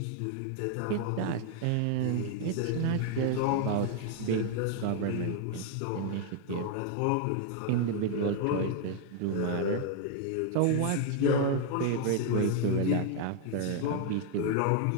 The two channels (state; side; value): different; both; correlation 0.00